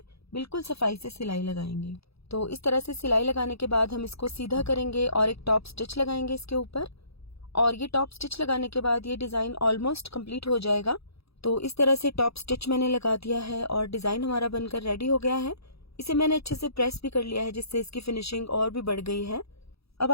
बिल्कुल सफाई से सिलाई लगाएंगे। तो इस तरह से सिलाई लगाने के बाद हम इसको सीधा करेंगे और एक टॉप स्टिच लगाएंगे इसके ऊपर और ये टॉप स्टिच लगाने के बाद ये डिजाइन ऑलमोस्ट कंप्लीट हो जाएगा। तो इस तरह से टॉप स्टिच मैंने लगा दिया है और डिजाइन हमारा बनकर रेडी हो गया है। इसे मैंने अच्छे से प्रेस भी कर लिया है जिससे इसकी फिनिशिंग और भी बढ़ गई है। अब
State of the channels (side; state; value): right; late; 0.77 ms